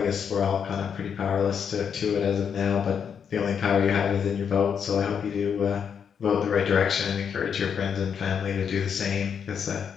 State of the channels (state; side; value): quieter; right; 7.3 dB